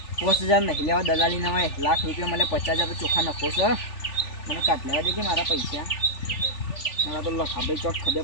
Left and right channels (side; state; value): right; late; 3.4 ms